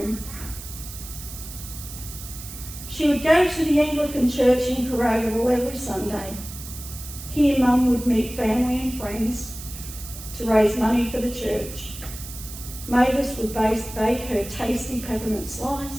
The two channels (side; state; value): right; noise; hiss, 12 dB below the sound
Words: She would go to the Anglican church in Carragable every Sunday. Here Mum would meet family and friends to raise money for the church. Mavis would bake her tasty peppermint